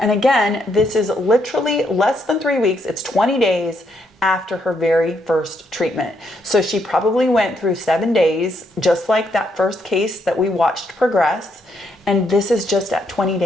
again, this is literally less than 3 weeks. It's 20 days after her very first treatment. So she probably went through 7 days, just like that first case that we watched progress. And this is just at 20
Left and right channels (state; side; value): normal; both; correlation 0.75